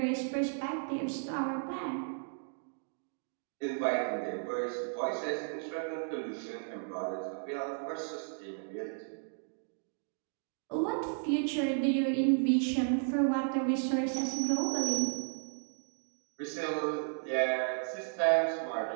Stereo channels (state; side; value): silent; left; digital silence